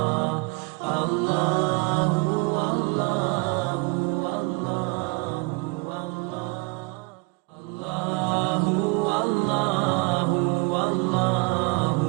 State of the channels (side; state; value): left; quieter; 28.4 dB